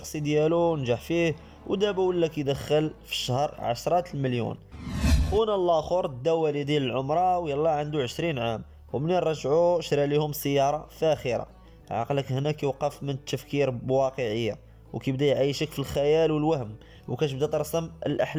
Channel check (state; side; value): identical; both; correlation 1.00